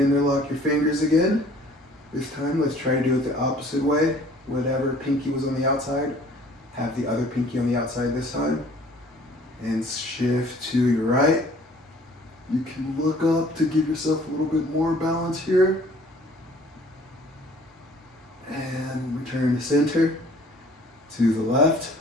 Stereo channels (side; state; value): both; normal; correlation 0.54